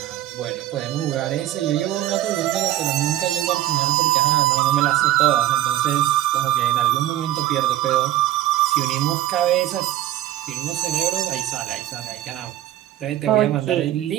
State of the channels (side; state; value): left; quieter; 13.5 dB